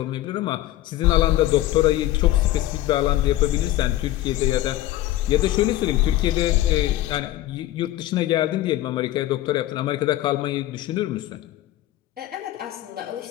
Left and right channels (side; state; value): right; quieter; 15.1 dB